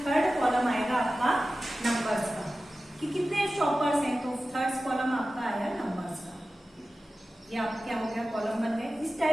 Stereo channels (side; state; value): both; normal; correlation 0.95